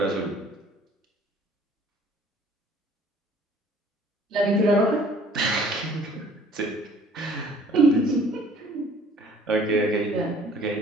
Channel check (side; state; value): both; normal; correlation 0.54